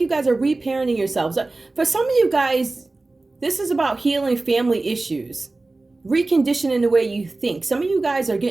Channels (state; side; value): quieter; left; 3.2 dB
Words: guys are reparenting yourselves. For some of you guys, this is about healing family issues. Reconditioning the way you think. Some of you guys are